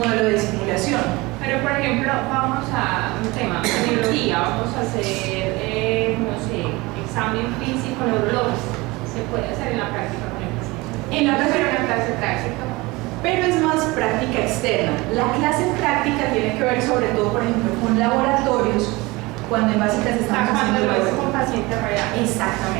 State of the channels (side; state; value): left; quieter; 22.7 dB